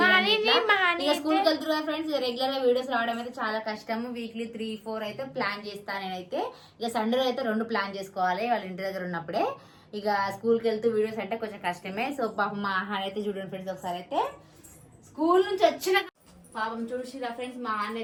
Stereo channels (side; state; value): both; identical; correlation 1.00